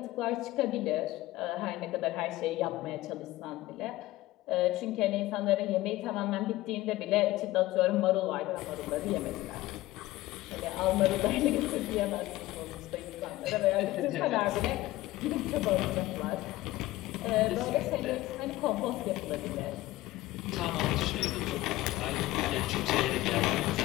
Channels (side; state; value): right; quieter; 17.3 dB